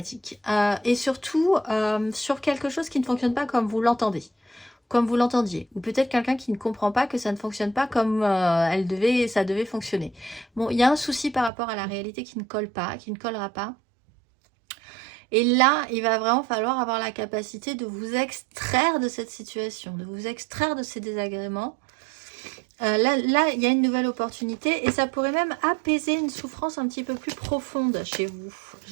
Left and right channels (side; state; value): left; drops out; at 11.5 s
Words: Et surtout, sur quelque chose qui ne fonctionne pas comme vous l'entendez. Comme vous l'entendiez, ou peut-être quelqu'un qui ne comprend pas que ça ne fonctionne pas comme ça devait fonctionner. Bon, il y a un souci par rapport à la réalité qui ne colle pas, qui ne collera pas. Et là, il va vraiment falloir avoir la capacité de vous extraire de cette situation, de vous extraire de ces désagréments. Là, il y a une nouvelle opportunité et ça pourrait même apaiser une souffrance un petit peu plus profonde chez vous,